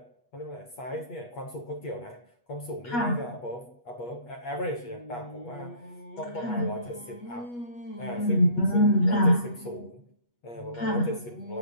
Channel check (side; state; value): right; late; 8.3 ms